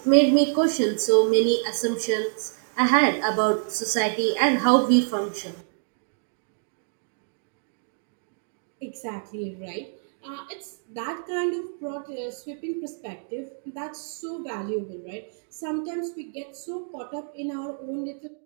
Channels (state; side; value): silent; left; digital silence